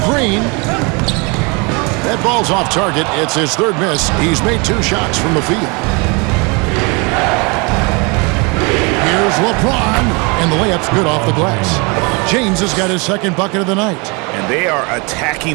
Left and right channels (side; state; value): left; quieter; 30.1 dB